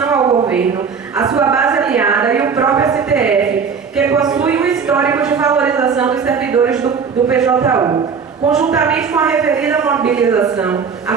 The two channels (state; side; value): quieter; left; 6.0 dB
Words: ao governo, a sua base aliada e o próprio STF, que possui um histórico de valorização dos servidores do PJU. Conjuntamente com a referida mobilização, a